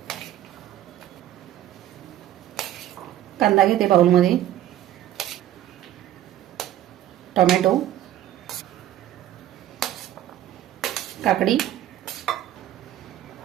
कांदा घेते बाउलमध्ये, टोमॅटो, काकडी,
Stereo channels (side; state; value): left; quieter; 12.5 dB